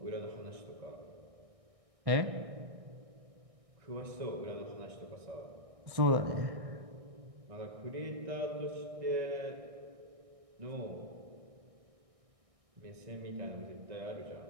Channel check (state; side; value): late; left; 1.6 ms